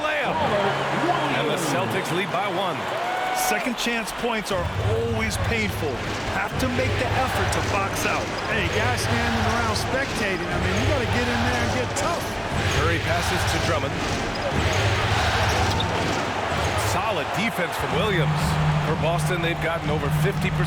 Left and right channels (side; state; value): both; identical; correlation 1.00